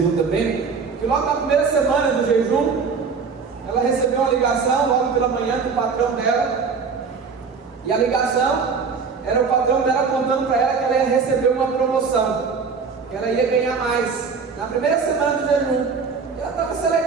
também, que logo na primeira semana do jejum, ela recebeu uma ligação logo pela manhã do patrão dela. E a ligação era o patrão dela contando para ela que ela ia receber uma promoção, que ela ia ganhar mais na primeira semana do jejum. E ela estava se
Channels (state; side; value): quieter; left; 5.3 dB